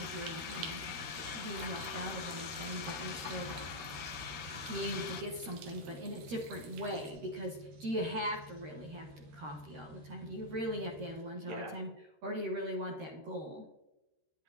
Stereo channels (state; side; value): late; left; 13 ms